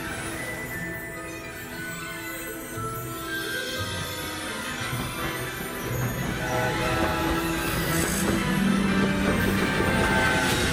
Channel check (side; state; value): both; identical; correlation 1.00